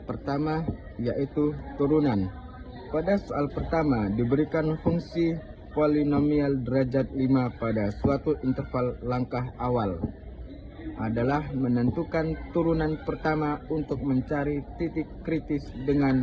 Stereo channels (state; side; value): identical; both; correlation 1.00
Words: pertama yaitu turunan. Pada soal pertama diberikan fungsi polinomial derajat 5 pada suatu interval. Langkah awal adalah menentukan turunan pertama untuk mencari titik kritis